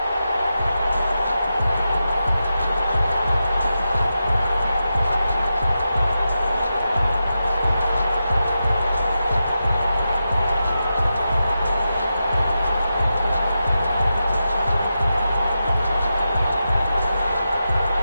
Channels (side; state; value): both; inverted; correlation -0.89